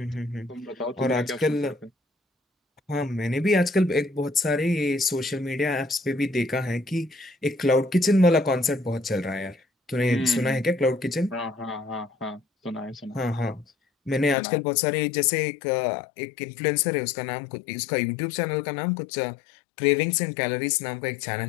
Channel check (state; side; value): drops out; right; at 14.4 s